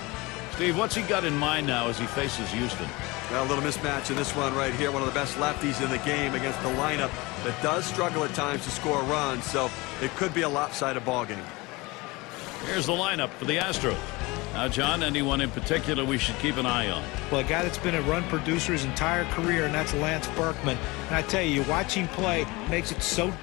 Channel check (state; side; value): quieter; right; 23.4 dB